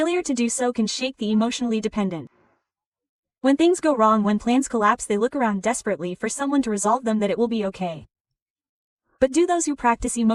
to do so can shake the emotionally dependent. When things go wrong, when plans collapse, they look around desperately for someone to resolve them, that it will be okay. But do those who practice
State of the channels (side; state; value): both; identical; correlation 1.00